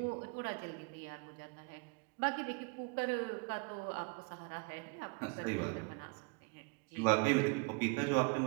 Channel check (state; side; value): quieter; left; 33.8 dB